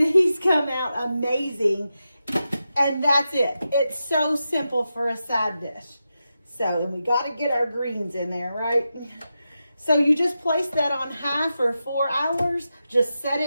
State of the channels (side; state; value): both; inverted; correlation -0.89